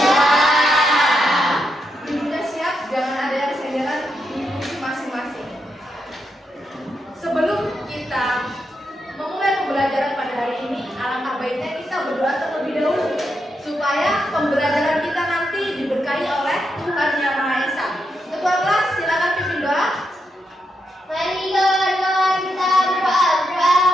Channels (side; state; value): both; normal; correlation 0.83